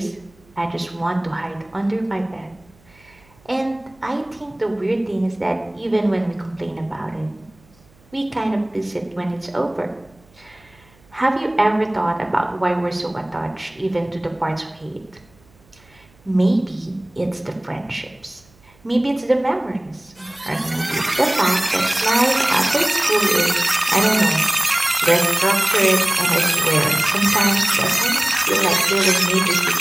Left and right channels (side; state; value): right; noise; hum, 30 dB below the sound